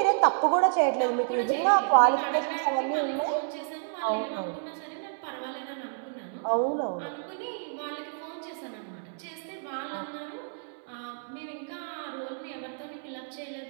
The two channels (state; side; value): silent; left; 58 dB below the other